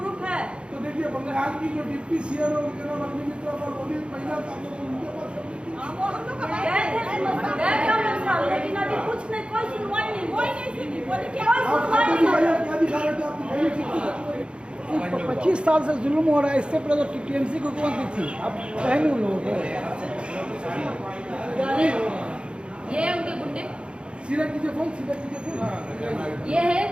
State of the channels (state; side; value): late; left; 0.055 ms